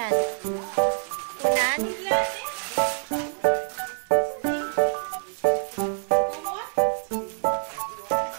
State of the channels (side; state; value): left; silent; 61 dB below the other